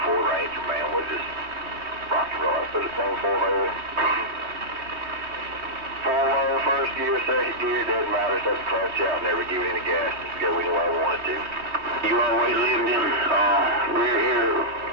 Ford Ranger, man, was just rock and roll. I put a thing 4-low. 4-low, first gear, second gear, doesn't matter. Just clutch out, never give it any gas. Just go anywhere I wanted to. You always lived in rear here,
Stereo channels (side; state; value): left; late; 3.2 ms